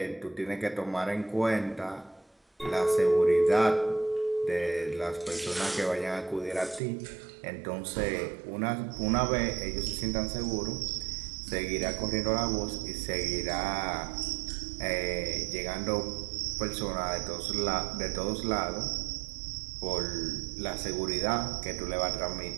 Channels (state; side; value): drops out; left; at 6.8 s